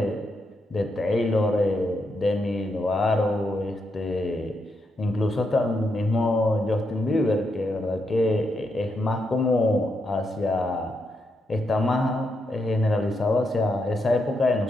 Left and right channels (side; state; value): both; normal; correlation 0.82